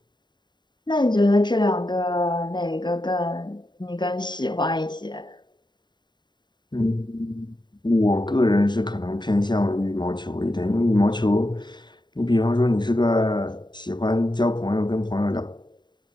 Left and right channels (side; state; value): right; late; 0.21 ms